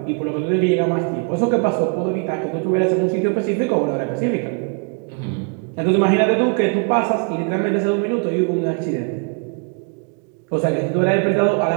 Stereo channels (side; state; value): left; quieter; 37.4 dB